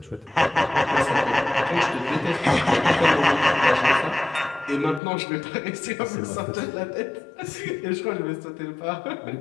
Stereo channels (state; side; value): drops out; right; at 5.0 s